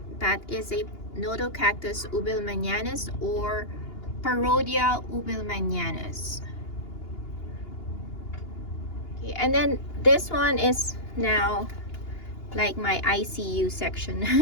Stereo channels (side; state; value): right; late; 2.8 ms